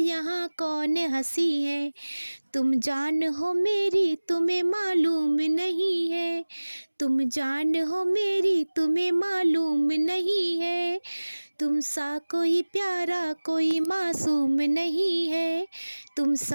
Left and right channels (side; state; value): both; inverted; correlation -1.00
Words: कौन हंसी है। तुम जान हो मेरी तुम्हें मालूम नहीं है, तुम जान हो मेरी तुम्हें मालूम नहीं है। तुम सा कोई प्यारा कोई मासूम नहीं है, तुम